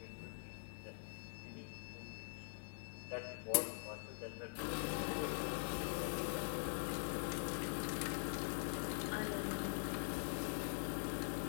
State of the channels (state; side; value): silent; right; digital silence